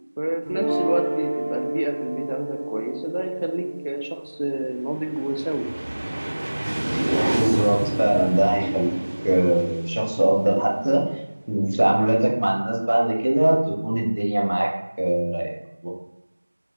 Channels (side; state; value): both; inverted; correlation -1.00